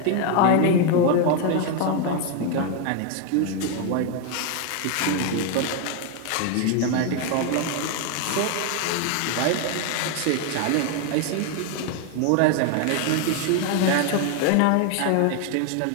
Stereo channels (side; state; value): both; different; correlation 0.01